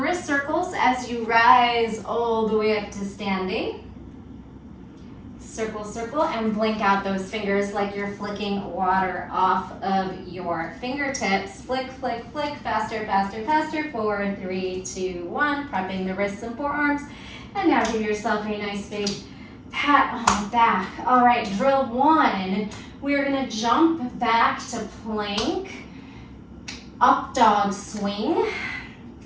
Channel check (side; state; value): both; identical; correlation 1.00